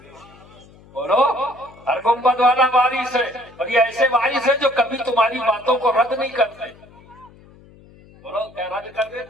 بولو، ہر گنبد والا وارث ہے. اور یہ ایسے وارث ہیں جو کبھی تمہاری باتوں کو رد نہیں کرتے. بولو، کیا رد کر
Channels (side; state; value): left; noise; hum, 24 dB below the sound